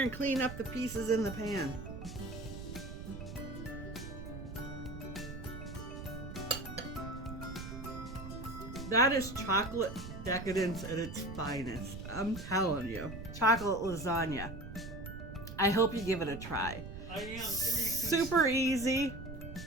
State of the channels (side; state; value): right; noise; rumble, 10 dB below the sound